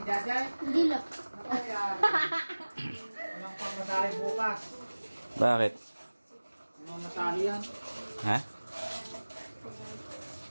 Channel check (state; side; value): inverted; both; correlation -1.00